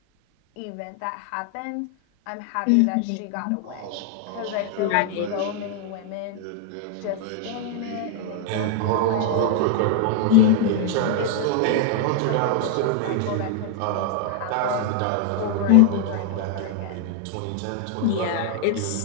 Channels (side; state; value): both; different; correlation 0.00